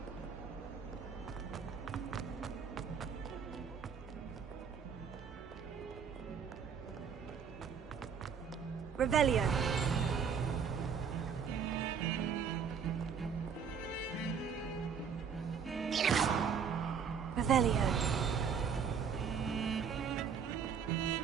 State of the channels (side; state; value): left; quieter; 6.7 dB